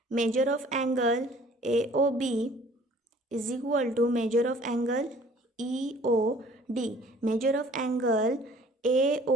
measure of angle AOB is equal to measure of angle EOD। Measure of angle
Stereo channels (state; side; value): normal; both; correlation 0.53